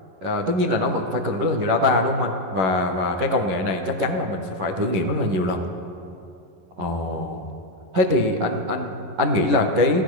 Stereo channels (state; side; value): late; left; 11 ms